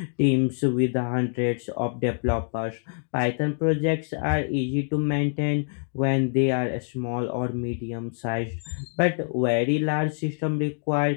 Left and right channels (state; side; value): silent; right; digital silence